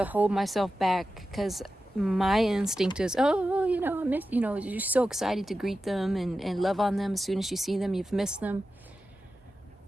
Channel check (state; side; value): normal; both; correlation 0.92